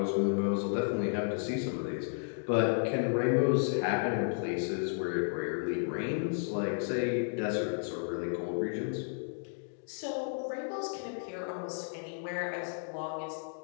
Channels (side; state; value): right; silent; digital silence